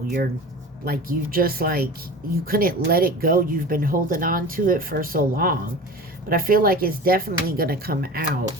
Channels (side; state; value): both; normal; correlation 0.35